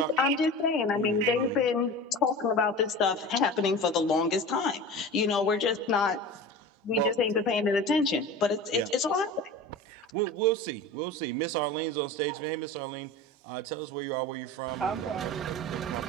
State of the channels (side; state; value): both; normal; correlation 0.33